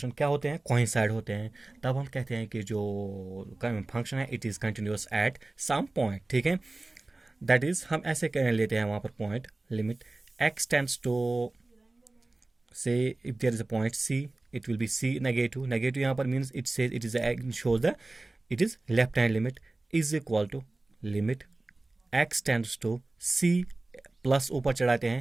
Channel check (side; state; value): left; quieter; 3.0 dB